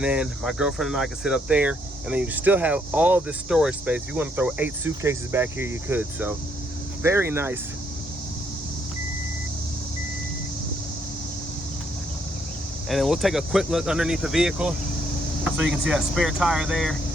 then my girlfriend and I could sit up there, and then you still have all this storage space. If you want to throw 8 suitcases back here, you could. So very nice. And then we'll take a quick look underneath the vehicle so you can see that spare tire there,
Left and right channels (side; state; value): both; normal; correlation 0.72